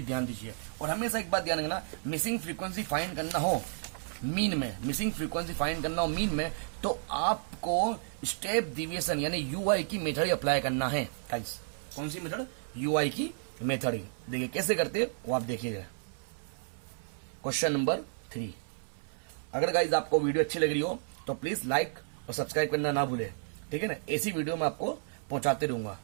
ध्यान दीजिए। और हमेशा एक बात ध्यान रखना, मिसिंग फ्रीक्वेंसी फाइंड करना हो मीन में, मिसिंग फ्रीक्वेंसी फाइंड करना हो मीन में, तो आपको स्टेप डिविएशन यानी यूआई की मेथड अप्लाई करना है गाइस। कौन सी मेथड? यूआई की मेथड। देखिए कैसे करते हैं वो आप देखिएगा। Question number 3। अगर गाइस आपको वीडियो अच्छी लग रही हो तो प्लीज लाइक और सब्सक्राइब करना ना भूले। ठीक है ना, ऐसी वीडियो मैं आपको पहुंचाते रहूंगा।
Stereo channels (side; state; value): left; silent; 56 dB below the other